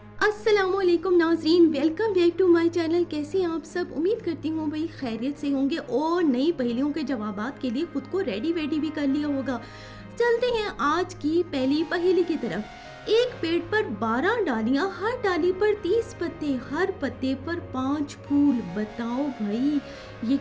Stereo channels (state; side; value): identical; both; correlation 1.00